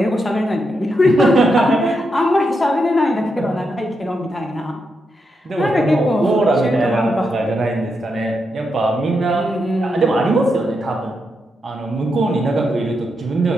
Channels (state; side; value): normal; both; correlation 0.83